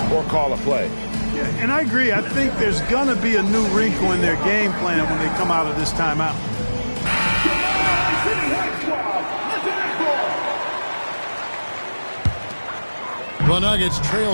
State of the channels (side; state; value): both; inverted; correlation -1.00